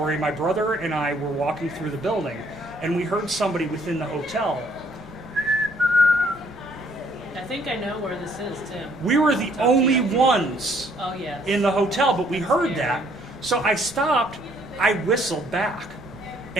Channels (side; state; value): both; normal; correlation 0.64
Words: my brother and I were walking through the building, and we heard somebody within the hotel. I think I know where this is, Tim. We were the only ones in the hotel, but we heard that. So I stopped, I whistled back,